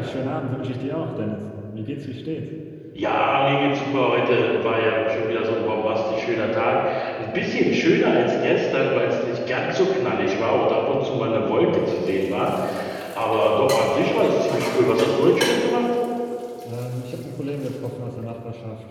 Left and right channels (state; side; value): identical; both; correlation 1.00